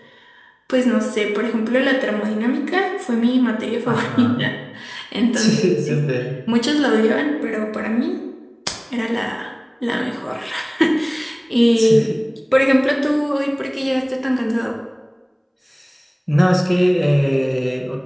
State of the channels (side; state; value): both; identical; correlation 1.00